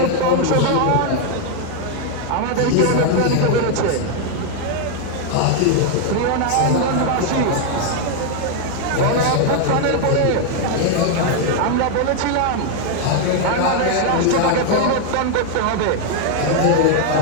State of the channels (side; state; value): both; different; correlation 0.00